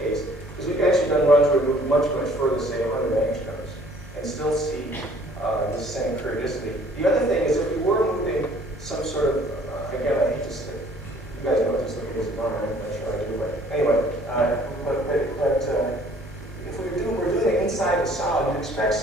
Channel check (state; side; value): normal; both; correlation 0.56